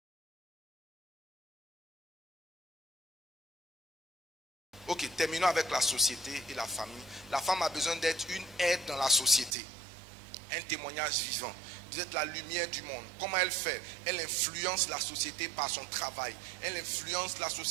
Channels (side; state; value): left; drops out; at 9.6 s